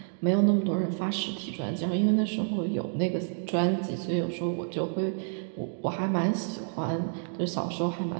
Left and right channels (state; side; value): silent; left; digital silence